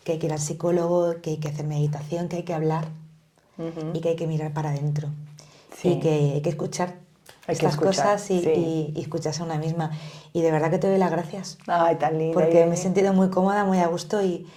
hay que ir al psicólogo, que hay que hacer meditación, que hay que hablar y que hay que mirar para adentro. Sí. Y que hay que escuchar estas cosas y escucharse a una misma. Y de verdad que te doy las gracias. Ay, tan linda. Porque Irene. me he sentido muy cómoda, muy a gusto y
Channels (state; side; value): identical; both; correlation 1.00